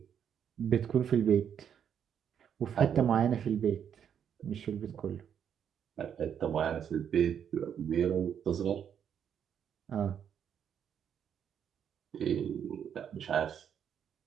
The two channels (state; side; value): quieter; left; 8.5 dB